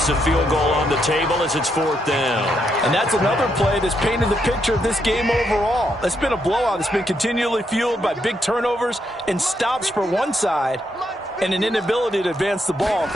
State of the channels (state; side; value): normal; both; correlation 0.78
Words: the field goal on the table as it's 4th down. And that's another play that's painted the picture of this game overall. It's been a blowout. It's been continually fueled by big turnovers and stops for one side and an inability to advance the ball